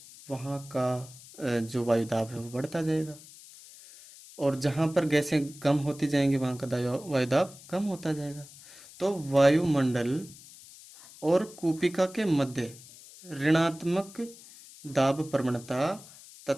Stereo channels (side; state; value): left; noise; hiss, 19 dB below the sound